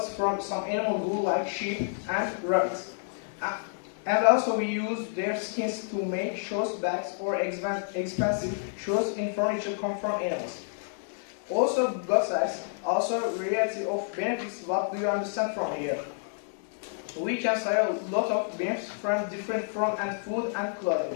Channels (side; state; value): right; silent; digital silence